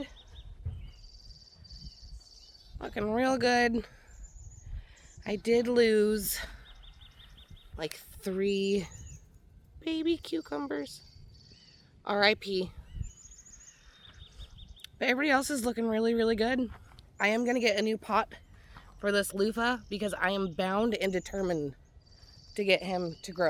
Looking real good. I did lose like 3 baby cucumbers. R.I.P. But everybody else is looking really, really good. I am going to get a new pot for this loofah because I am bound and determined to get him to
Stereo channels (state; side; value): identical; both; correlation 1.00